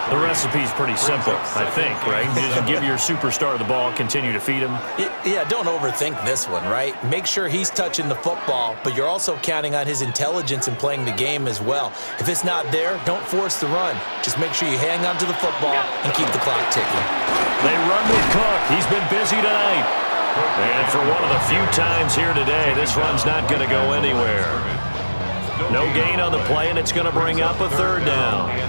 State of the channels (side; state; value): both; inverted; correlation -1.00